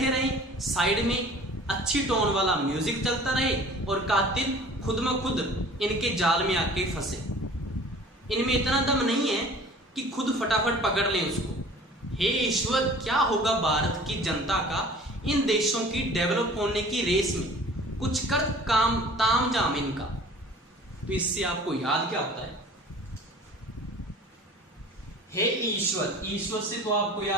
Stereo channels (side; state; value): both; normal; correlation 0.46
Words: रहे, साइड में अच्छी टोन वाला म्यूजिक चलता रहे, और कातिल खुद में खुद इनके जाल में आके फंसे। इनमें इतना दम नहीं है कि खुद फटाफट पकड़ लें उसको। हे ईश्वर, क्या होगा भारत की जनता का इन देशों की डेवलप होने की रेस में, कुछ कर काम ताम जाम इनका। तो इससे आपको याद क्या होता है, हे ईश्वर, ईश्वर से तो आपको